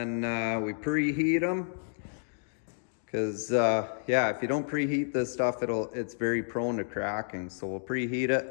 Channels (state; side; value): silent; right; digital silence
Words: we preheat them. Because yeah, if you don't preheat this stuff, it's very prone to cracking. So we'll preheat